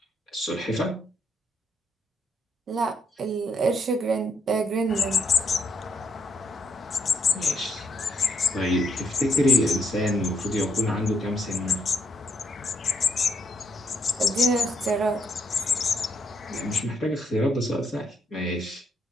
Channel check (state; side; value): normal; both; correlation 0.74